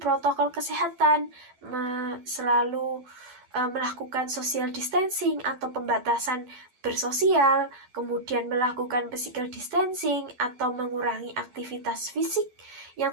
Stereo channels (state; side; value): late; left; 12 ms